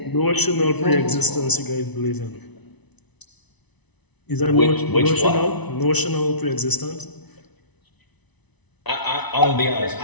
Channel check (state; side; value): late; right; 1.0 ms